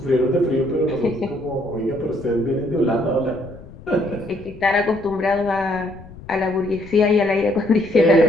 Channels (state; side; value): noise; left; rumble, 18 dB below the sound